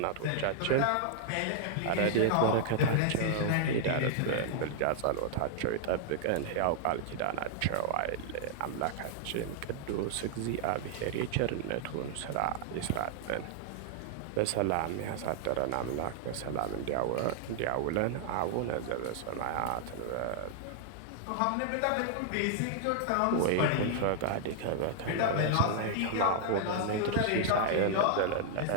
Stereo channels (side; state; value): both; different; correlation -0.01